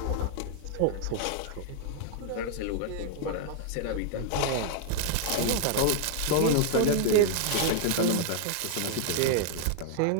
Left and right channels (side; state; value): both; different; correlation 0.00